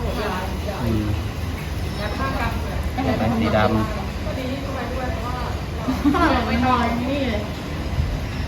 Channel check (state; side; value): identical; both; correlation 1.00